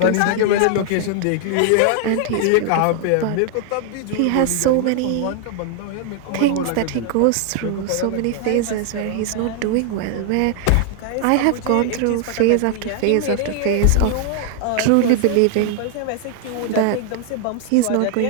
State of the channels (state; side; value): different; both; correlation 0.00